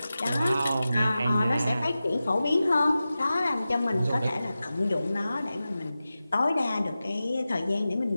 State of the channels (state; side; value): inverted; both; correlation -0.94